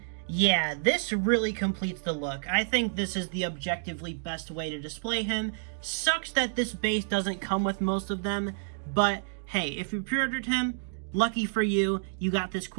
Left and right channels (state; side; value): silent; left; digital silence